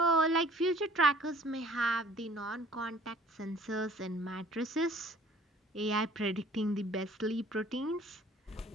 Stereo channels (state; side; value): normal; both; correlation 0.52